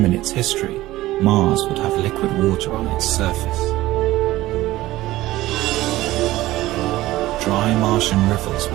in its history, Mars would have liquid water on its surface. Dry Martian rivers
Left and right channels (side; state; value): left; quieter; 16.8 dB